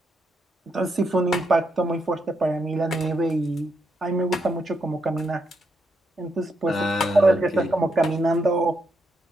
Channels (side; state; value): both; normal; correlation 0.80